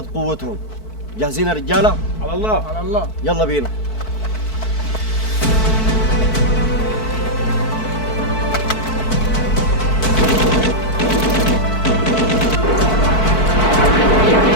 قوتهم. جاهزين يا رجاله؟ على الله. على الله. يلا بينا.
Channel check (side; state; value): right; late; 4.6 ms